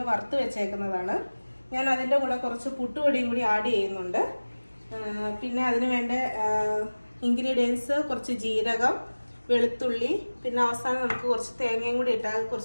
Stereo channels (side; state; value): both; inverted; correlation -1.00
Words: വറുത്ത് വെച്ചേക്കുന്നതാണ്. ഞാൻ അതിൻ്റെ കൂടെ കുറച്ച് പുട്ടുപൊടിയും കൂടി ആഡ് ചെയ്യുന്നുണ്ട്. പിന്നെ അതിന് വേണ്ട ഇൻഗ്രീഡിയൻസ് കുറച്ച് ജീരകം, വെളുത്തുള്ളി, പിന്നെ അവസാനം നമുക്ക് കുറച്ച് തേങ്ങയും കൂടി ഇട്ടാൽ